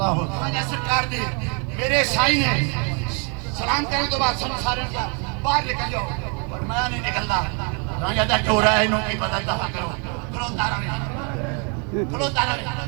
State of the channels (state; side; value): quieter; left; 36.3 dB